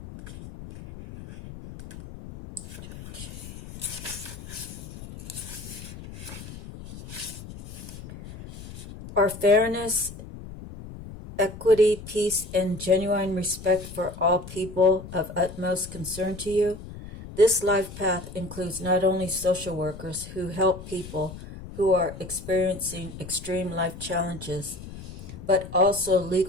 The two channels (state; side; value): noise; left; rumble, 13 dB below the sound